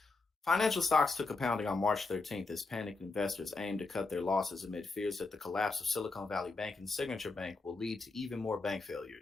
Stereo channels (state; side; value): quieter; right; 3.7 dB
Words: Financial stocks took a pounding on March 13th as panicked investors aimed to cut their losses amid fears that the collapse of Silicon Valley Bank and Signature Bank will lead to even more bank